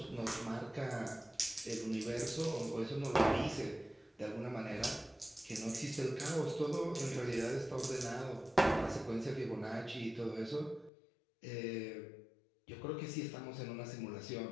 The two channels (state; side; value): drops out; right; at 10.9 s